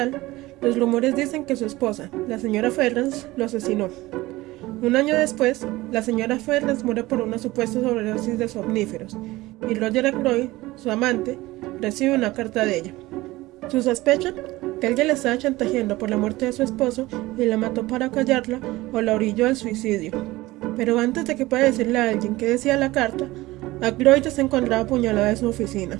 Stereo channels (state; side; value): quieter; left; 19.0 dB